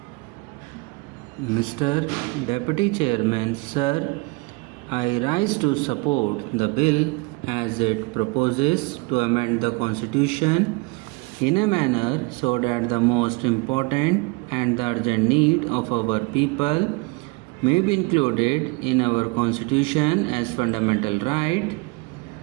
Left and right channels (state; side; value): quieter; left; 26.3 dB